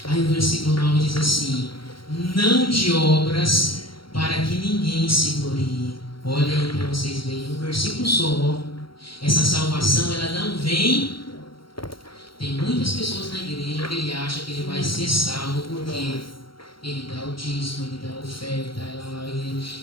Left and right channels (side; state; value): right; late; 0.73 ms